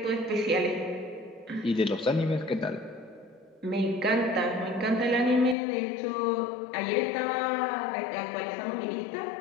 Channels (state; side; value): drops out; right; at 5.6 s